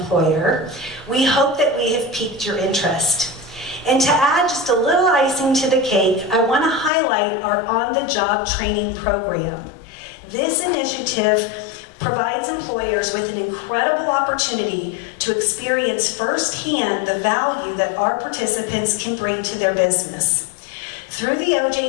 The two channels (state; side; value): drops out; right; at 6.9 s